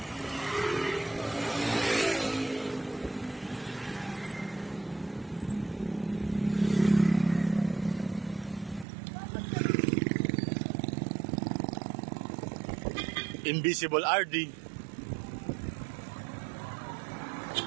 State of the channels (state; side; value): drops out; left; at 8.8 s